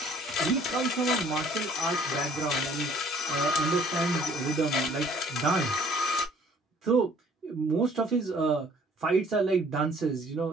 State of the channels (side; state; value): both; normal; correlation 0.57